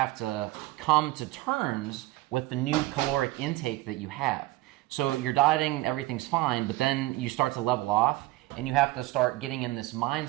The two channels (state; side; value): quieter; left; 18.8 dB